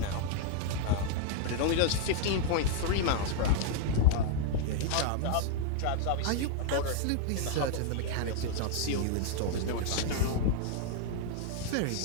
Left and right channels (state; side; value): different; both; correlation 0.00